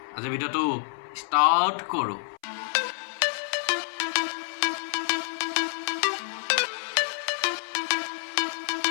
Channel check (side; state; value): right; silent; 60 dB below the other